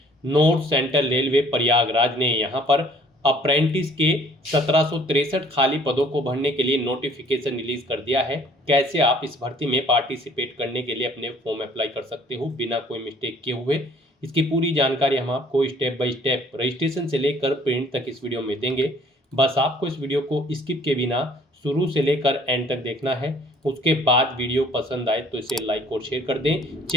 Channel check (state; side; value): normal; both; correlation 0.57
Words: North Central Railway Prayagraj ने यहाँ पर अप्रेंटिस के 1763 खाली पदों को भरने के लिए नोटिफिकेशन रिलीज कर दिया है। कैसे आप इस भर्ती में पार्टिसिपेट करने के लिए अपने फॉर्म अप्लाई कर सकते हो बिना कोई मिस्टेक किए हुए, इसकी पूरी जानकारी हम आपको स्टेप बाय स्टेप रजिस्ट्रेशन से लेकर प्रिंट तक इस वीडियो में देंगे। बस आपको इस वीडियो को स्किप के बिना शुरू से लेकर एंड तक देखना है। उसके बाद वीडियो पसंद आए तो इसे लाइक और शेयर कर दें।